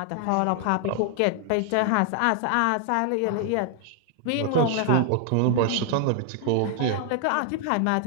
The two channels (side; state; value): both; different; correlation 0.00